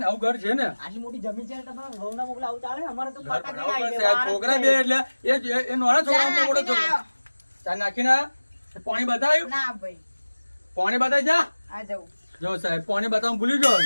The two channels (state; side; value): inverted; both; correlation -1.00